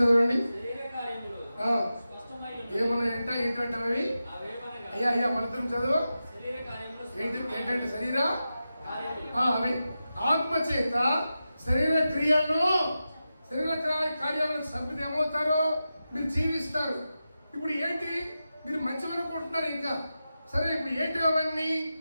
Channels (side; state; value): both; inverted; correlation -0.91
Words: చదవండి. ఏమన్నాయంట? ఏంటంటే అయ్యా మనతో చదువు. ఏంటంటే శరీర అవి ఆత్మ చేత శరీర క్రియలను శరీర కార్యాలను చంపితే ఏమవుతారో? మీరు జీవిస్తారు. ఇప్పుడు ఏంటి? మీరు మంచిగా అనుకుంటున్నారు ఇంకా. సరే ఇప్పుడు ఏంటి అవన్నీ